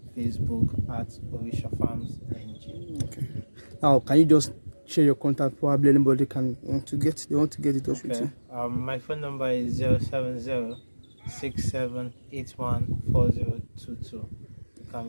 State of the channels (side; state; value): both; inverted; correlation -1.00